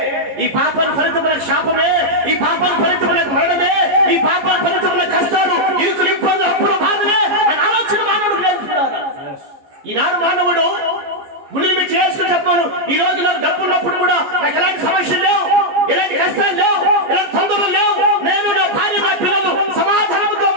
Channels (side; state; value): left; late; 14 ms